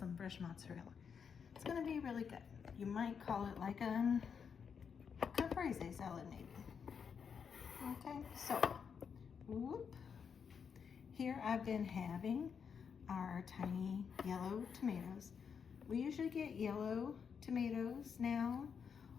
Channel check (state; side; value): quieter; right; 6.7 dB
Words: fresh mozzarella. It's going to be really good. You might call it like a caprese salad maybe. Okay, so here I've been having our tiny yellow tomatoes. We usually get yellow tomatoes now.